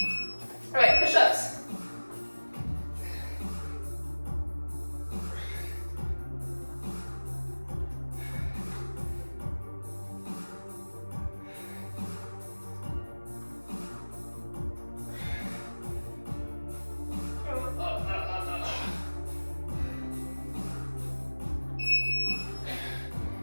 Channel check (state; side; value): inverted; both; correlation -1.00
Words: All right, push-ups.